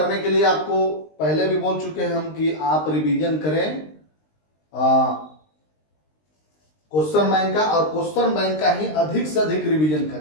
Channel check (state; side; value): late; right; 19 ms